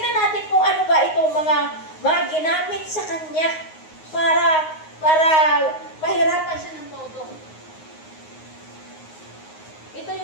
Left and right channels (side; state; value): right; late; 9.5 ms